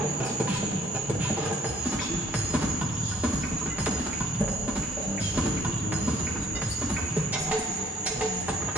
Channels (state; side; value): normal; both; correlation 0.61